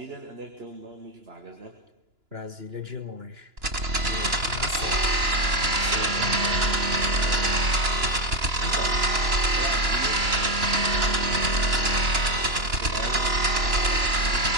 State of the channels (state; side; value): late; left; 2.9 ms